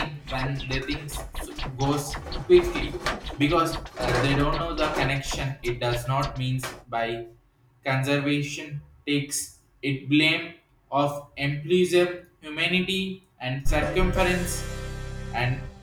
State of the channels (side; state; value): both; identical; correlation 1.00